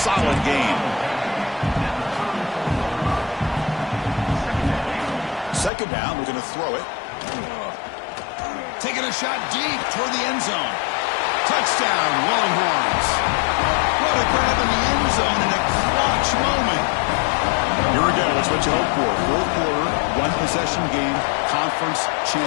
gain. 2nd down, we're going to throw it. Taking a shot deep toward the end zone. Touchdown, Longhorns. What a grab in the end zone in a clutch moment. Here again, that's what you hope for. 4th quarter, 1-possession game, conference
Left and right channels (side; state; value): right; drops out; at 5.7 s